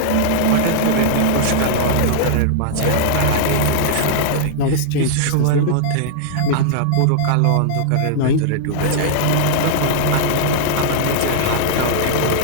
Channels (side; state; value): both; different; correlation -0.01